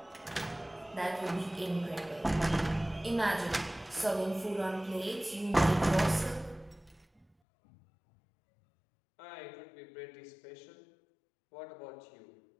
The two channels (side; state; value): right; drops out; at 7.2 s